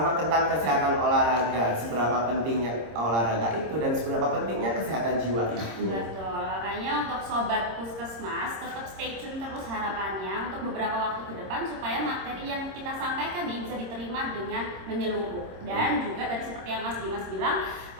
tentang kesehatan olahraga, seberapa pentingnya olahraga itu dan seberapa pentingnya kesehatan jiwa itu. Betul, makanya untuk sobat Puskesmas tetap stay tune terus harapannya untuk beberapa waktu ke depan supaya materi yang kita sampaikan ini bisa diterima dengan menyeluruh. Dan juga tadi seperti yang Mas Dimas bilang,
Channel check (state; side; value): late; left; 26 ms